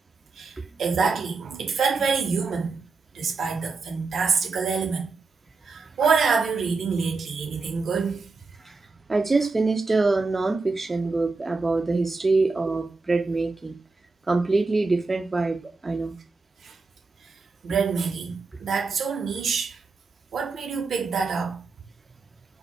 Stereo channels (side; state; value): left; quieter; 4.0 dB